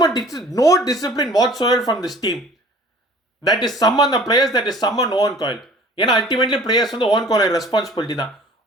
no discipline whatsoever from this team. That is summon the players, that is summon Owen Coyle. ஏன்னா அல்டிமேட்லி பிளேயர்ஸ் வந்து ஓவன் காயில் ரெஸ்பான்சிபிலிட்டி தான்.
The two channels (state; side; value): normal; both; correlation 0.48